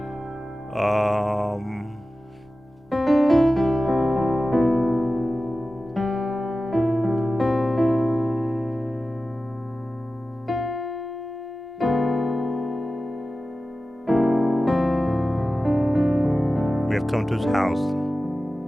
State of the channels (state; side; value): normal; both; correlation 0.94